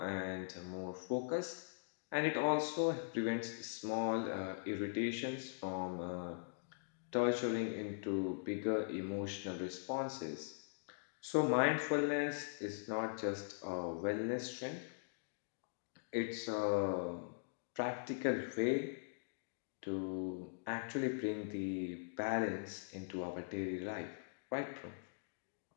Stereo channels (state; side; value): silent; right; digital silence